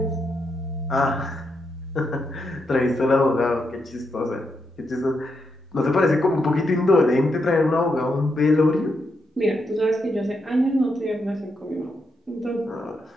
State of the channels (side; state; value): both; normal; correlation 0.82